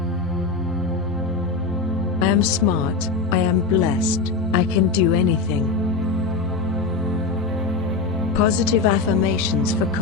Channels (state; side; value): quieter; right; 4.1 dB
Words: I am smart, I am blessed, I can do anything. Positive affirmations for